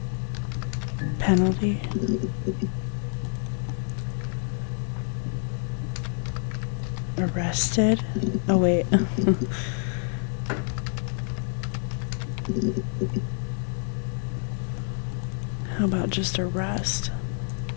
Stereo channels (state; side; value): silent; right; 60 dB below the other